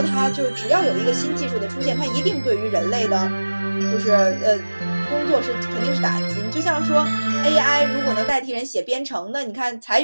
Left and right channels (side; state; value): both; inverted; correlation -1.00